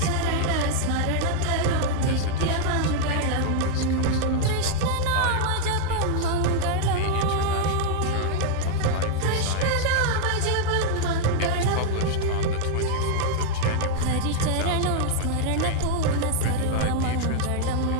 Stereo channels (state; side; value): different; both; correlation -0.01